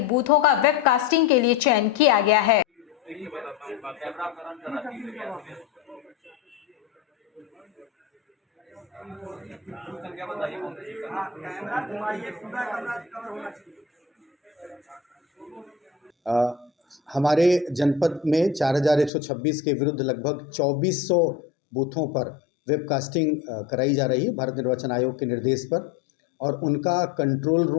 बूथों का वेबकास्टिंग के लिए चयन किया गया है। हमारे जनपद में 4126 के विरुद्ध लगभग 2400 बूथों पर वेबकास्टिंग कराई जा रही है भारत निर्वाचन आयोग के निर्देश पर, और उनका कंट्रोल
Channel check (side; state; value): right; drops out; at 19.1 s